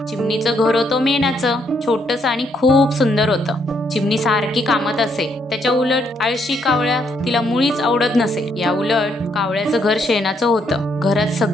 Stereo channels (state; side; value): normal; both; correlation 0.73